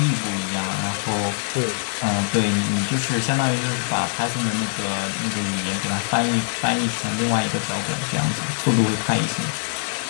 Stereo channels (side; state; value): right; silent; digital silence